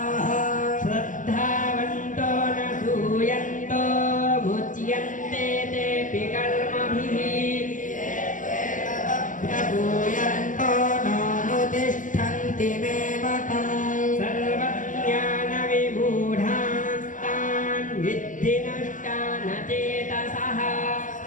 श्रद्धावन्तो न सूयन्तो मुच्यन्ते तेऽपि कर्मभिः प्रभूयन्तो नानुतिष्ठन्ति मे मतम् सर्वज्ञानविमूढास्तान् विद्धि नष्टान् चेतसः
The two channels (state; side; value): late; right; 0.38 ms